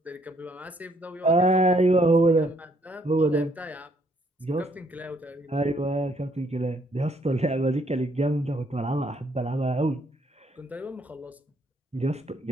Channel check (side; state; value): both; normal; correlation 0.68